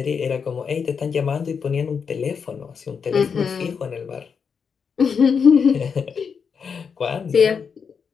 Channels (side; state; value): right; quieter; 6.2 dB